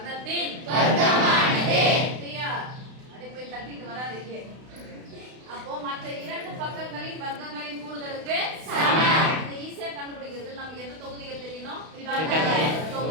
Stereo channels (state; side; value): late; left; 32 ms